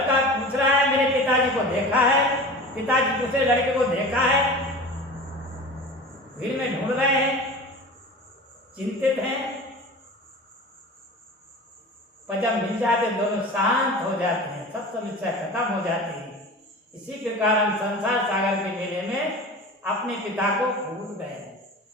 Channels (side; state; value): both; normal; correlation 0.35